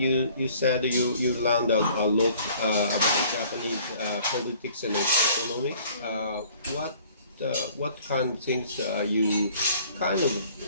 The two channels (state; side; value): inverted; both; correlation -0.54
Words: said you learned a lot about Japanese politics and economics. what kind of things you kind of,